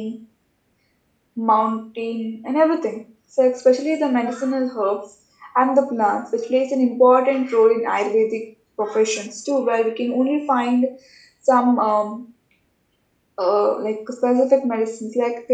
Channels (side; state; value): both; identical; correlation 1.00